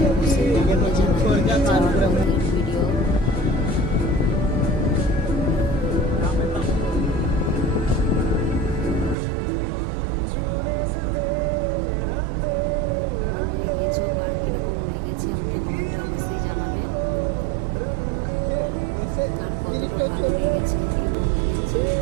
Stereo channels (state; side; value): drops out; left; at 9.2 s